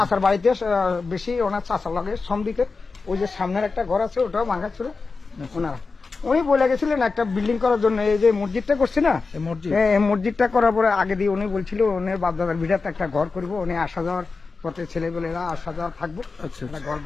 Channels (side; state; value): right; quieter; 4.3 dB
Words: বাড়িতে বেশি ওনার চাচার লাগে সমদিকে ওই যে সামনের একটা ঘর আছে ওটাও ভাঙা ছিল ওনারা। উনি বলে গেছিলেন একটা বিল্ডিং করার জন্য, এই যে মসজিদটা করছে না, এই মসজিদ? এই মসজিদটা করার পরে আগে দিয়ে উনি বলছিল ওনার বাপদাদার ভিটাতে একটা ঘর করবো, উনি আসা যাওয়ার পথে ছেলেবেলেরা আসা যাওয়া থাকবো, আচ্ছা, একটা ঘর